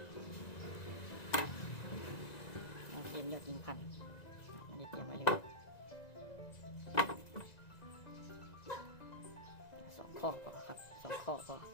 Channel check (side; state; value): right; late; 1.9 ms